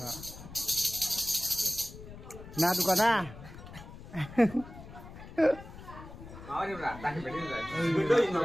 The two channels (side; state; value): left; noise; rumble, 15 dB below the sound